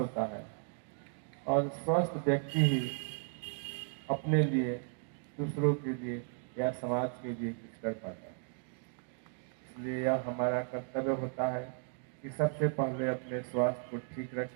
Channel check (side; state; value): left; silent; 54 dB below the other